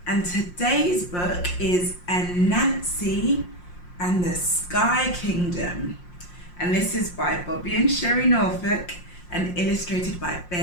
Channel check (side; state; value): right; late; 5.6 ms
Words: And today's book is Anansi and the Sky Kingdom. And this is by Bobby and Sherry Norfolk and illustrated by